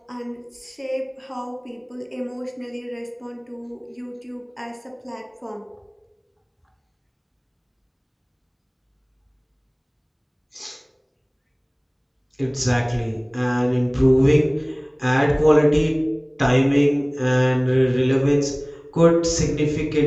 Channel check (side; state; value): both; identical; correlation 1.00